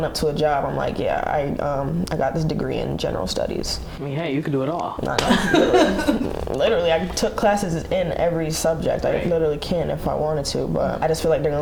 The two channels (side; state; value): both; identical; correlation 1.00